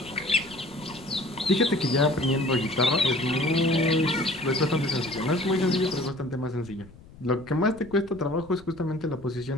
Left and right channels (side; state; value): left; noise; rumble, 21 dB below the sound